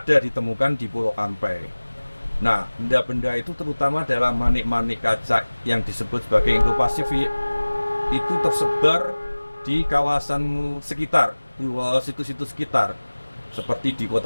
ditemukan di Pulau Kampai. Nah, benda-benda itu terutama adalah manik-manik kaca yang disebut sebagai Indo-Pasifik itu tersebar di kawasan sekitar, situs-situs sekitar seperti di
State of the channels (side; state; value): both; inverted; correlation -1.00